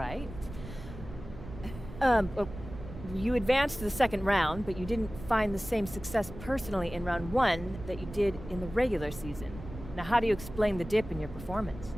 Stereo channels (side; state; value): right; noise; rumble, 12 dB below the sound